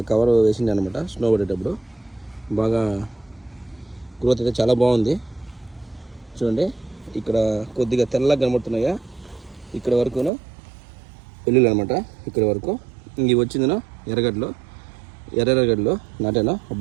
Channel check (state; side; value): drops out; left; at 10.3 s